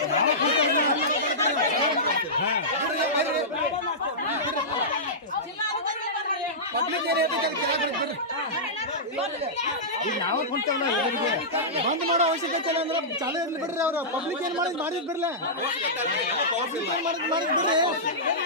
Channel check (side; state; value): both; normal; correlation -0.15